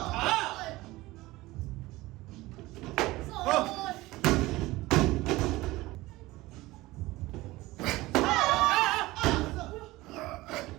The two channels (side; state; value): left; quieter; 19.2 dB